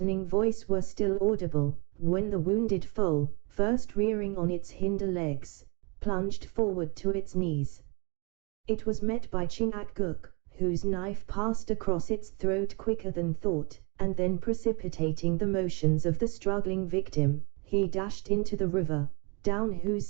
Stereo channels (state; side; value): quieter; left; 31.1 dB